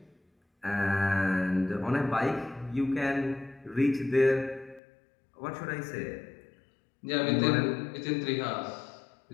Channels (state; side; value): drops out; right; at 4.8 s